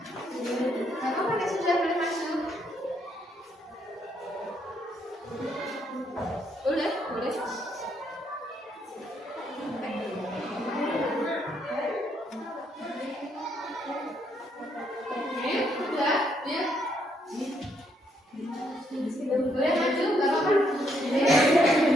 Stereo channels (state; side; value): normal; both; correlation 0.74